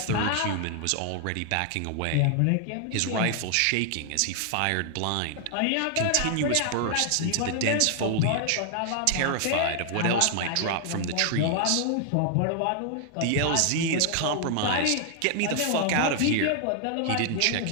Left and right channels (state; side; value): different; both; correlation 0.00